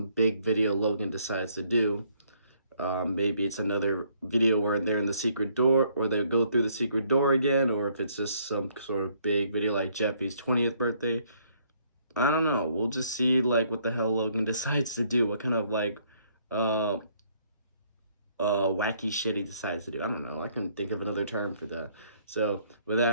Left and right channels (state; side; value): inverted; both; correlation -0.67